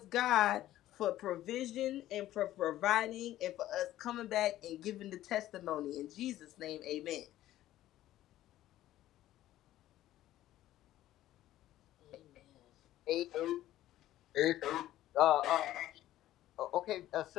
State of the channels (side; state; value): right; quieter; 14.0 dB